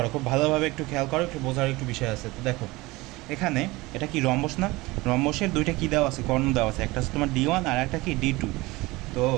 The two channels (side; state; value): left; quieter; 21.5 dB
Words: খুব ভালোভাবে একটু খেয়াল করো, একটু বোঝার একটু বিষয় আছে। তো দেখো এখানে এটা কি রম্বস না? রম্বসের দুইটা কী দেওয়া আছে, কর্ণ দেওয়া আছে, একটা হচ্ছে তোমার D1 আর একটা কি D2। তো